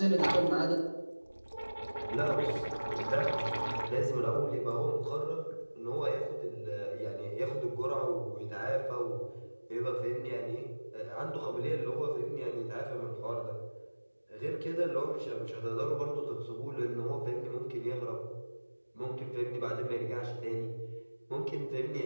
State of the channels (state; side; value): inverted; both; correlation -1.00